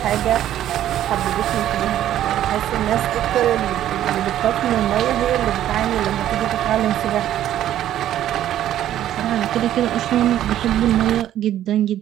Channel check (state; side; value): quieter; left; 11.9 dB